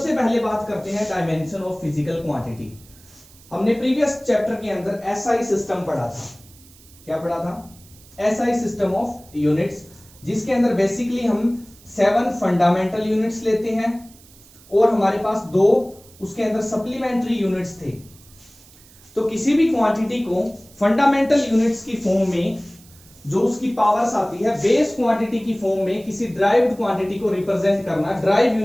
पहले बात करते हैं डायमेंशन ऑफ फिजिकल क्वांटिटी। हमने प्रीवियस चैप्टर के अंदर SI सिस्टम पढ़ा था। क्या पढ़ा था? SI सिस्टम ऑफ यूनिट्स, जिसके अंदर बेसिकली हम 7 फंडामेंटल यूनिट्स लेते हैं और हमारे पास 2 उसके अंदर सप्लीमेंट्री यूनिट्स थे। तो किसी भी क्वांटिटी को फंडामेंटल यूनिट्स की फॉर्म में जो उसकी पावर्स आती है, बेस क्वांटिटी की फॉर्म में किसी ड्राइव्ड क्वांटिटी को रिप्रेजेंट करना, ड्राइव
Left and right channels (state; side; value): noise; right; hiss, 25 dB below the sound